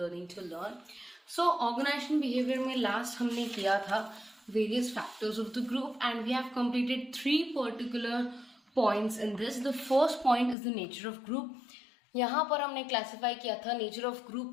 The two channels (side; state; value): right; drops out; at 10.6 s